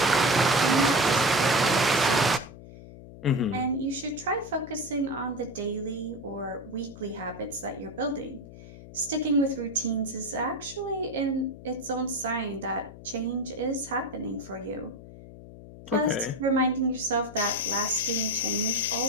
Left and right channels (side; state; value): left; noise; hum, 16 dB below the sound